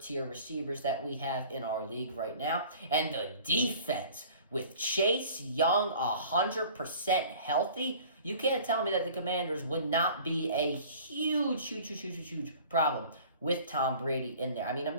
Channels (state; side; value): inverted; both; correlation -0.47